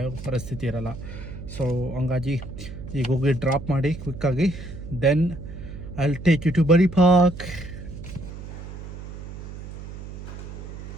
ಪರಿಸ್ಥಿತಿ ಇರಲ್ಲ. ಸೊ ಹಂಗಾಗಿ ಈಗ ಹೋಗಿ ಡ್ರಾಪ್ ಮಾಡಿ ಕ್ವಿಕ್ಕಾಗಿ, then I'll take you to Buddy Park.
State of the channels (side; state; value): right; noise; hum, 11 dB below the sound